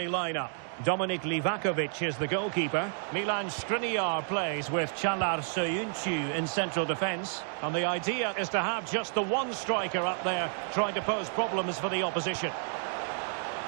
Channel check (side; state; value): left; silent; 57 dB below the other